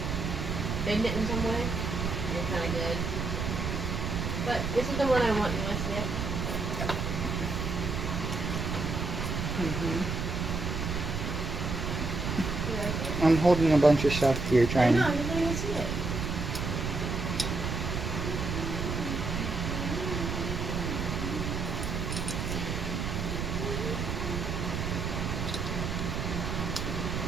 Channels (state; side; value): noise; right; rumble, 2 dB below the sound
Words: bend it in some way, you're kind of good. But this is the one I want, you want to see it? I'm holding a bunch of stuff here I trying know, to. I didn't even see it.